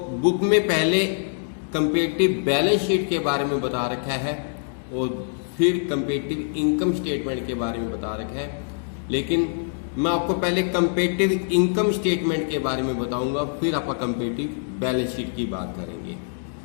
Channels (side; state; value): right; silent; digital silence